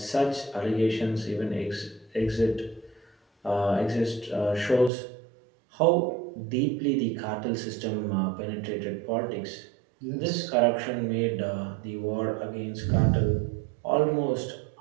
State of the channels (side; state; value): left; drops out; at 4.9 s